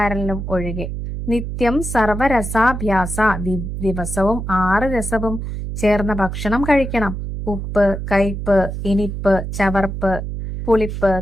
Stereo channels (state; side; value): noise; right; hum, 5 dB below the sound